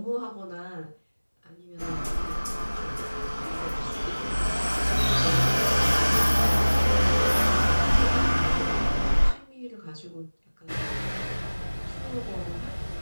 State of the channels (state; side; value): inverted; both; correlation -1.00